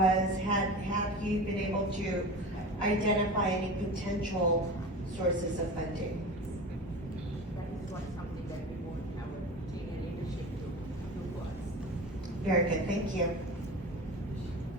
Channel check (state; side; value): normal; both; correlation 0.32